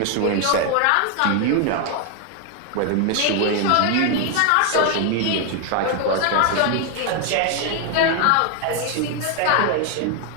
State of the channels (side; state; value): both; different; correlation 0.01